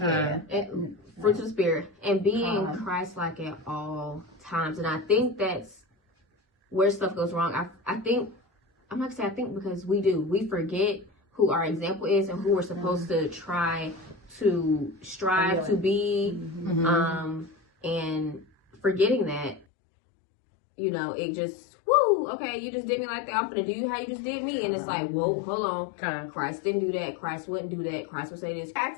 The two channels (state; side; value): drops out; right; at 19.7 s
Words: And fruits of the spirit. And being Christ-like at all times. And I think that's where stuff goes wrong. I think, I'm not going to say I think, because we forget who our example is and who we're supposed to try to strive to be. And forgetting that, you know, it just, woo, okay, you just did me like that. I'm going to do you how you just did me. And it's like, whoa, hold on. Christ didn't do that. Christ wouldn't do that. Christ would say this. We have